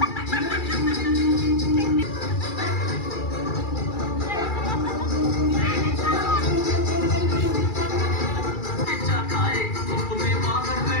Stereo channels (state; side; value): late; right; 2.3 ms